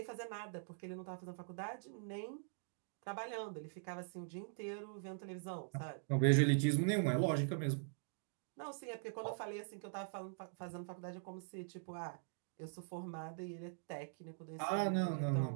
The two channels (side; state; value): left; silent; digital silence